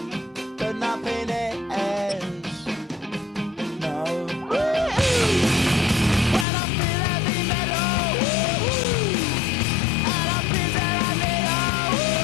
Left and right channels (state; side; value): drops out; right; at 6.5 s